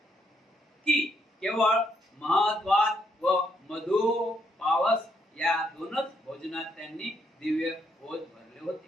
की केवळ महत्वात व मधु पावस या दोनच भोजनात त्यांनी दिव्य भोज भरले होते.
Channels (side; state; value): both; normal; correlation 0.74